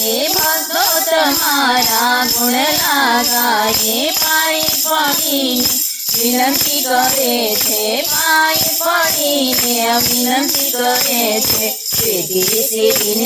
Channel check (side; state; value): both; identical; correlation 1.00